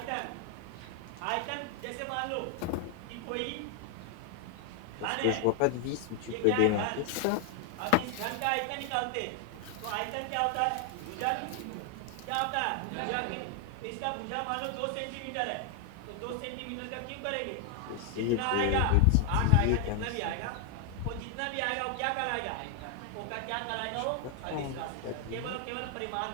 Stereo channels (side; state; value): both; different; correlation 0.00